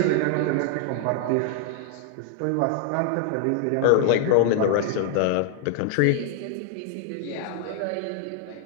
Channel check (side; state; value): both; different; correlation 0.00